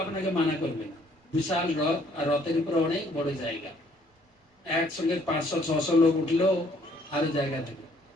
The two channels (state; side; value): normal; both; correlation 0.63